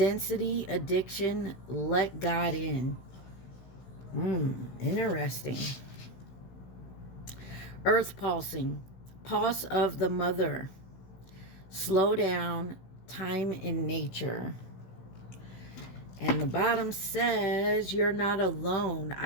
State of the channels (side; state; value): right; late; 16 ms